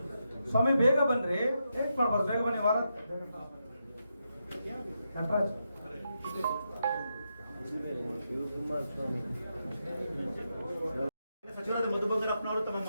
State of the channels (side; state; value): both; inverted; correlation -0.84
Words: ಸ್ವಾಮಿ ಬೇಗ ಬನ್ರಿ, ಲೇಟ್ ಮಾಡ್ಬಾರ್ದು. ಬೇಗ ಬನ್ನಿ. ವಾರ ಕಂಟ್ರಾಜ್ ಸಚಿವರಾದ ಮಧು ಬಂಗಾರಪ್ಪನವರು ತಮ್ಮ